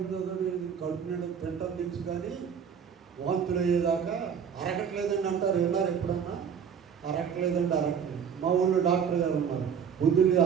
చదవడం, కడుపు నిండా తింటాం తెలుసు, కానీ వాంతులు అయ్యేదాకా అరగట్లేదండి అంటారు. విన్నారు ఎప్పుడన్నా? అరగట్లేదండి. మా ఊళ్ళో డాక్టర్ గారు ఉన్నారు. పొద్దున్నే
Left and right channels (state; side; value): quieter; left; 7.4 dB